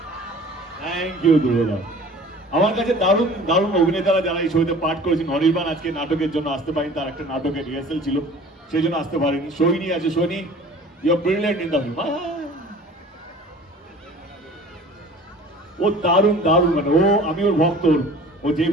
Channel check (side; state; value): both; normal; correlation 0.45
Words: থ্যাংক ইউ ধ্রুবদা। আমার কাছে দারুণ দারুণ অভিনেতারা যারা এই ছবিতে পাঠ করেছেন। অনির্বাণ আজকে নাটকের জন্য আসতে পারেনি, তার একটা নাটকের রিহার্সাল ছিল, সেই জন্য আসতে পারেনি। সোহিনী আছে, Sohini you are brilliant in the film. ও দারুণ দারুণ, মানে ও, আমি ওর ভক্ত। ও